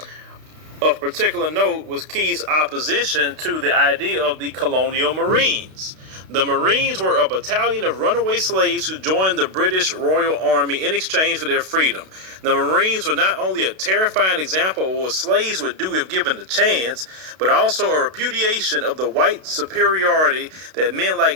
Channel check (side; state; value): left; late; 32 ms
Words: Of particular note was Key's opposition to the idea of the colonial Marines. The Marines were a battalion of runaway slaves who joined the British Royal Army in exchange for their freedom. The Marines were not only a terrifying example of what slaves would do if given the chance, but also a repudiation of the white superiority that men